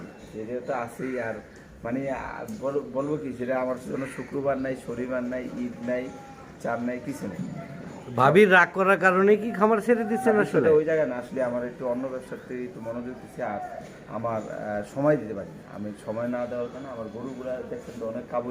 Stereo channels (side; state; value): both; identical; correlation 1.00